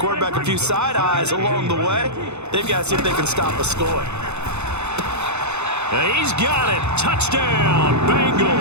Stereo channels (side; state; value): left; late; 0.81 ms